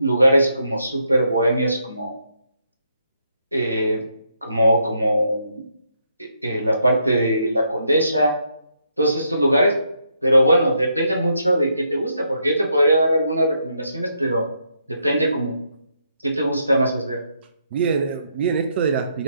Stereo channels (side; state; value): both; inverted; correlation -0.77